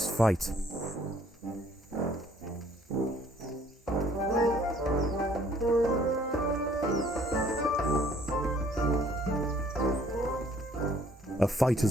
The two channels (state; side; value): normal; both; correlation 0.60